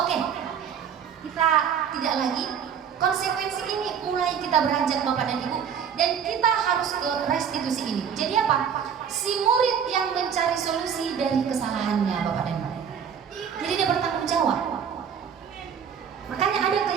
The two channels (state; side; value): quieter; left; 7.7 dB